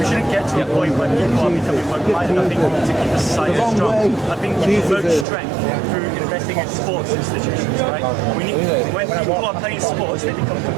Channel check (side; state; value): left; drops out; at 5.2 s